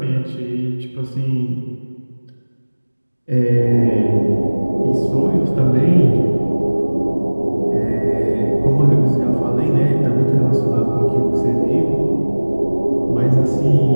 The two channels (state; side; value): inverted; both; correlation -1.00